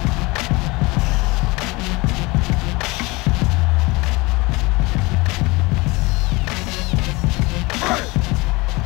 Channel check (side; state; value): right; quieter; 23.8 dB